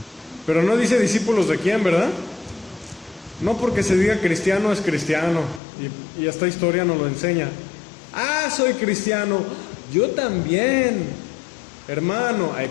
Pero no dice discípulos de quién, ¿verdad? No porque se diga cristiano es cristiano, y esta historia nos lo enseña. Ah, soy cristiano, yo también, hermano. Ay,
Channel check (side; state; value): right; drops out; at 5.6 s